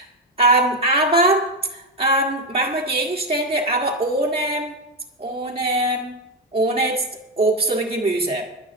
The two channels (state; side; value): normal; both; correlation 0.09